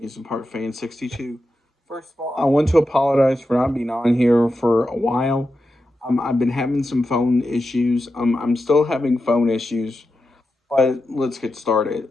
Park Fan 62. First of all, I want to apologize for not being on here for a while. I've been having some phone issues. I'm still having phone issues, but let's get started.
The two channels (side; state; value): both; normal; correlation 0.89